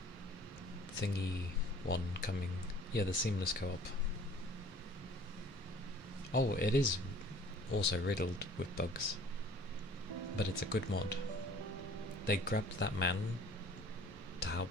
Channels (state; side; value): normal; both; correlation 0.51